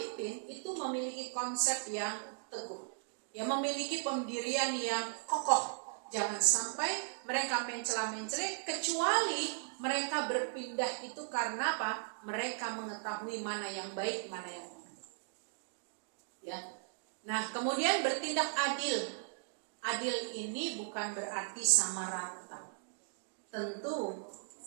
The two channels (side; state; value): left; silent; digital silence